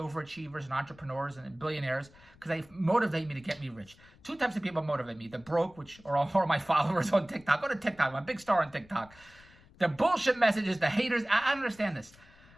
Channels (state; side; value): noise; left; rumble, 25 dB below the sound